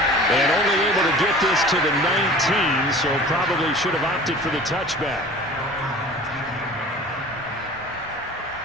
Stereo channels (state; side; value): normal; both; correlation 0.42